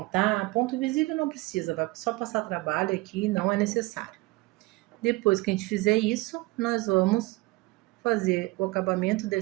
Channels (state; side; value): quieter; left; 21.9 dB